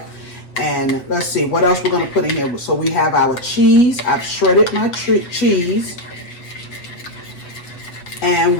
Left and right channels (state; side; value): late; right; 7.9 ms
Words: And let's see what else we're going to put in here. So we have our cheese. I've shredded my cheese. And